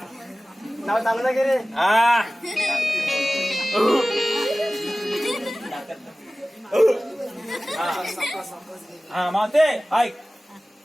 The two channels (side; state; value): both; normal; correlation 0.97